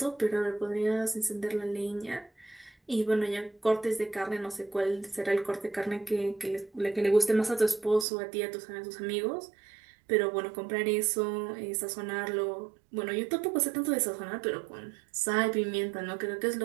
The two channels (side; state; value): left; drops out; at 8.1 s